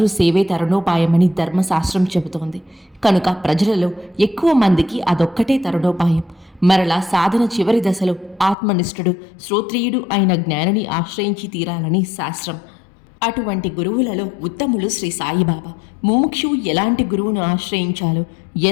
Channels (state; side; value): drops out; right; at 8.6 s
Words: సేవే తరుణోపాయమని ధర్మశాస్త్రం చెబుతోంది. కనుక ప్రజలలో ఎక్కువ మందికి అదొక్కటే తరుణోపాయం. మరలా సాధన చివరి దశలో ఆత్మనిష్ఠుడు శ్రోత్రియుడు అయిన జ్ఞానిని ఆశ్రయించి తీరాలని శాస్త్రం. అటువంటి గురువులలో ఉత్తములు శ్రీ సాయిబాబా. ముముక్షువు ఎలాంటి గురువును ఆశ్రయించాలో,